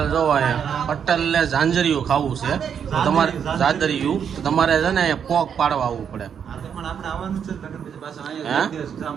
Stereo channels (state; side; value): quieter; left; 7.7 dB